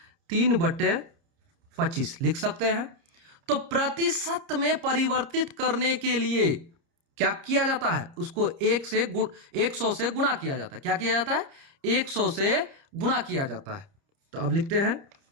3/25 लिख सकते हैं। तो प्रतिशत में परिवर्तित करने के लिए क्या किया जाता है, उसको 100 से गुणा किया जाता है। क्या किया जाता है 100 से गुणा किया जाता है। तो अब लिखते हैं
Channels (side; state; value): left; late; 30 ms